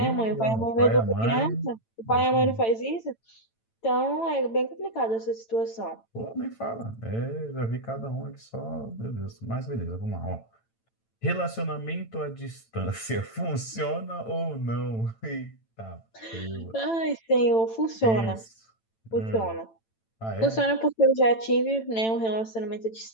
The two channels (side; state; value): right; late; 9.0 ms